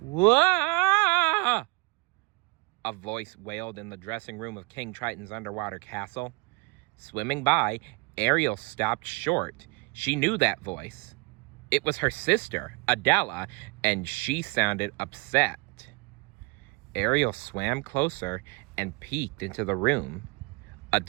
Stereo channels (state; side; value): quieter; left; 28.7 dB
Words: Whoa! A voice wailed in the dressing room of King Triton's underwater castle. Swimming by, Ariel stopped short. She knew that voice. It was her sister, Adella, and she sounded upset. Ariel swam closer and peeked into the room.